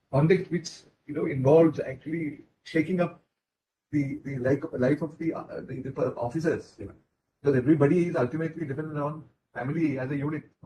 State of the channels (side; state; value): both; identical; correlation 1.00